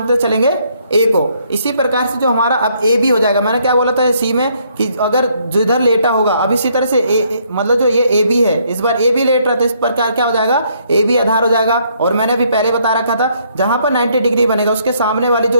चलेंगे, ए को। इसी प्रकार से जो हमारा अब ए बी हो जाएगा, मैंने क्या बोला था सी में कि अगर जिधर लेटा होगा, अब इसी तरह से मतलब जो ये ए बी है, इस बार ए बी लेट रहा था, इस प्रकार क्या हो जाएगा, ए बी आधार हो जाएगा। और मैंने अभी पहले बता रखा था, जहां पर 90 डिग्री बनेगा उसके सामने वाली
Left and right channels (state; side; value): inverted; both; correlation -0.69